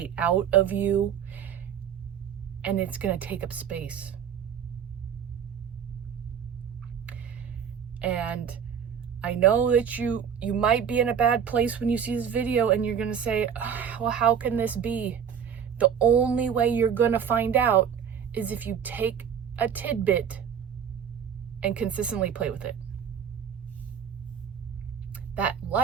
out of you and it's going to take up space. And I know that you might be in a bad place when you see this video and you're going to say, well, how can this be? The only way you're going to find out is if you take a tidbit and consistently play with it. That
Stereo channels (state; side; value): quieter; left; 7.8 dB